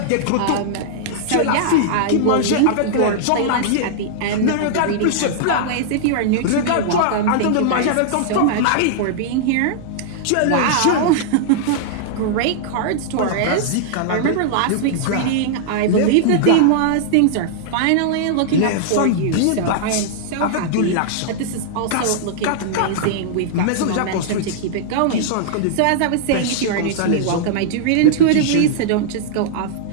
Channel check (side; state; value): both; different; correlation -0.01